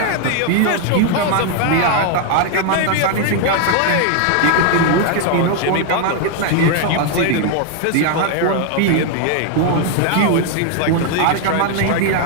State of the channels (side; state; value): both; different; correlation 0.00